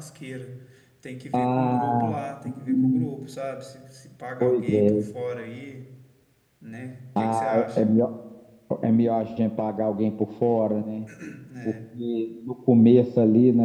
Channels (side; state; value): both; identical; correlation 1.00